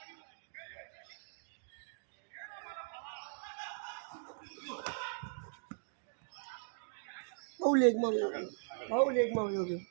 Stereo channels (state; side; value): silent; left; digital silence